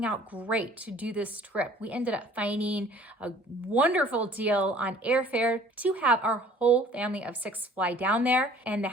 out great to do this trip. We ended up finding a wonderful deal on airfare to have our whole family of 6 fly down there. And the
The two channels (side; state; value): both; normal; correlation 0.52